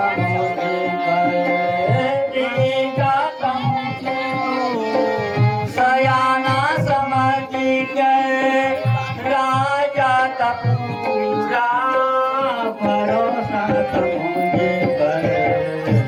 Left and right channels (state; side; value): identical; both; correlation 1.00